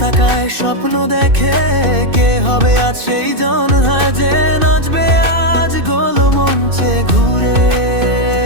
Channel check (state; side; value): late; left; 2.6 ms